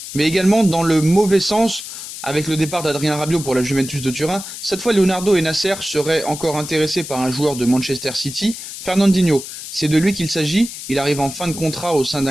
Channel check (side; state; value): left; noise; hiss, 10 dB below the sound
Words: mais également dans le mauvais sens avec le départ d'Adrien Rabiot pour la Juventus de Turin. Cette fois, Leonardo et Nasser seraient encore intéressés par un joueur de Manchester City, Fernandinho. C'est de lui qu'il s'agit, il arrive en fin de contrat au sein